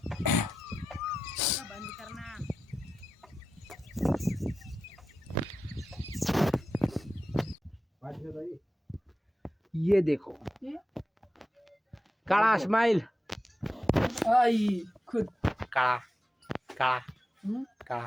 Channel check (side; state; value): both; normal; correlation 0.92